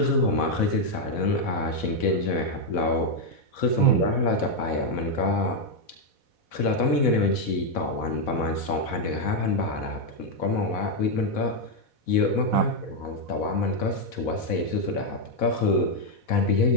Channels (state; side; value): late; right; 4.1 ms